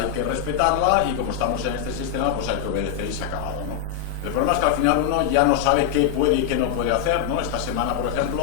que respetarla y como estamos en este sistema, pues hay que obedecer y se ha acabado, ¿no? El problema es que al final uno ya no sabe qué puede y qué no puede hacer, ¿no? Esta semana, por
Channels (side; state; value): right; quieter; 9.6 dB